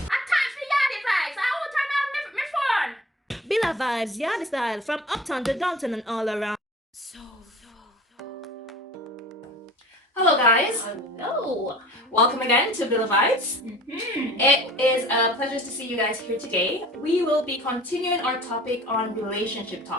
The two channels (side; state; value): both; normal; correlation 0.43